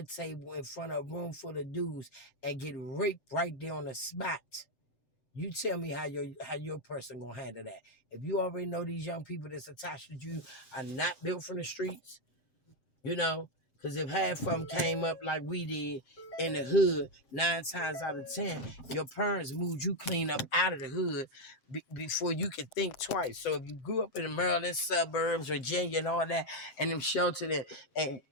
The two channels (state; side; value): late; right; 7.7 ms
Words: table in front of a room full of dudes and get raped right there on the spot, you tell me how your person gonna handle that. If you already know these young people that's attached to you are not built from the streets, you know, because if half of them came up like we did in the hood, 9 times out of 10, your parents moved you clean up out of the hood before you could think twice. So if you grew up in the Maryland suburbs, Virginia, and all that, and them sheltered and